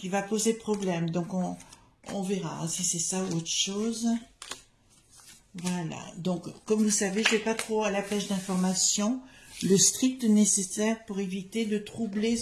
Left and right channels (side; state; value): both; identical; correlation 1.00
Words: va poser problème. Donc, on verra si c'est ça ou autre chose. Voilà. Donc, comme vous savez, je ne vais pas trop à la pêche d'informations. Le strict nécessaire pour éviter de troubler